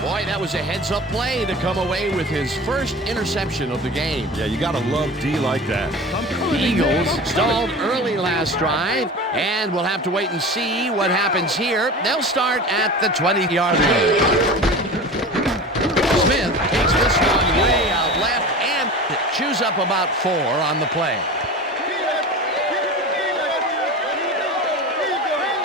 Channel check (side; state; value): both; normal; correlation 0.33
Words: Boy, that was a heads-up play to come away with his first interception of the game. Yeah, you got to love D like that. The Eagles stalled early last drive, and we'll have to wait and see what happens here. They'll start at the 20-yard line. Smith takes this one way out left and chews up about 4 on the play.